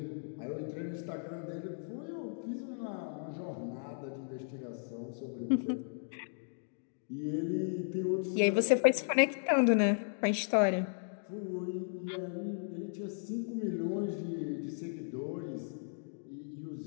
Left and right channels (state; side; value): silent; right; digital silence